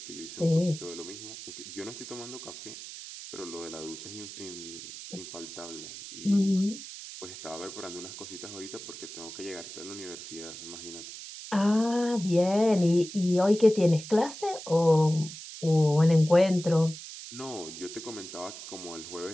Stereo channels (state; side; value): noise; right; hiss, 12 dB below the sound